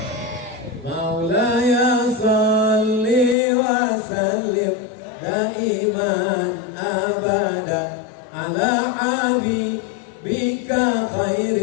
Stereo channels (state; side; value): drops out; right; at 3.4 s